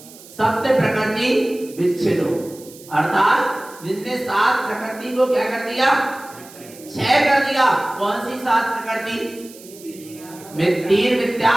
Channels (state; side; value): noise; right; hiss, 20 dB below the sound